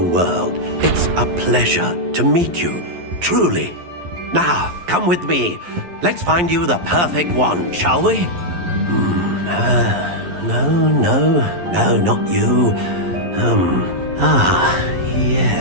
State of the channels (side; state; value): left; late; 11 ms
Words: It's a pleasure to meet you, truly. Now, come with me. Let's find you the perfect wand, shall we? No, not you.